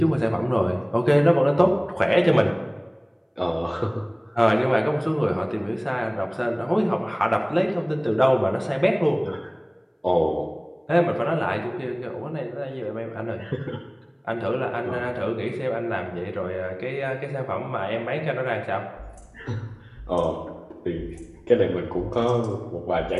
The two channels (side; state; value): both; identical; correlation 1.00